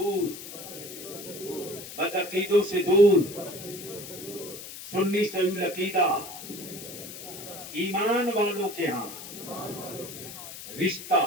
बदअकीदों से दूर सुन्नी सही अकीदा ईमान वालों के यहाँ रिश्ता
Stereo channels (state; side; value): noise; left; hiss, 12 dB below the sound